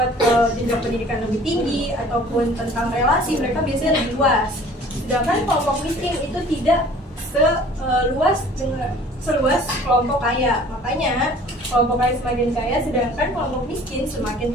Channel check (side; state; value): both; normal; correlation 0.50